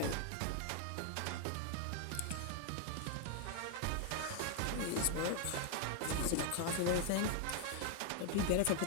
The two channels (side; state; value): both; different; correlation 0.00